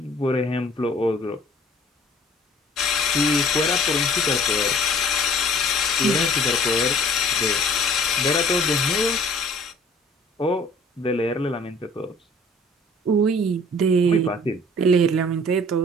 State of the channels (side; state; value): both; normal; correlation 0.52